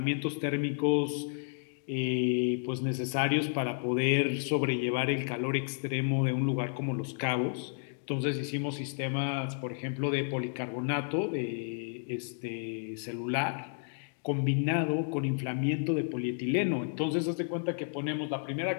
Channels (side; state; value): right; silent; 57 dB below the other